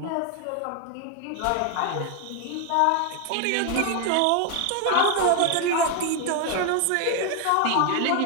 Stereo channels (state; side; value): different; both; correlation 0.01